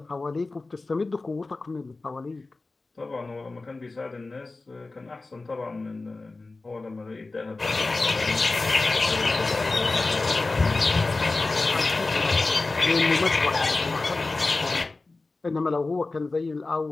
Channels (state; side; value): quieter; right; 3.5 dB